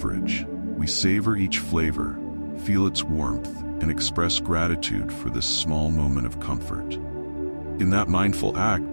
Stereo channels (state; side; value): inverted; both; correlation -1.00